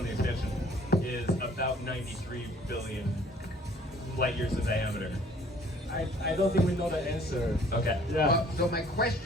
the expansion, is about 93 billion light years of diameter. I don't think we know the answer. Okay. Yeah. So my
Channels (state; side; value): normal; both; correlation 0.56